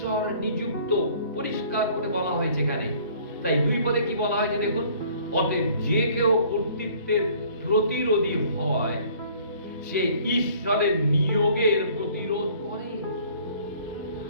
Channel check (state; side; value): inverted; both; correlation -0.55